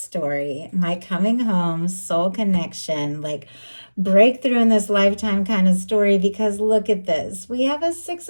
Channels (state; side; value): inverted; both; correlation -1.00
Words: my coming home, soul connection, like breakthrough in this lifetime kind of story, because look at this. We have a Six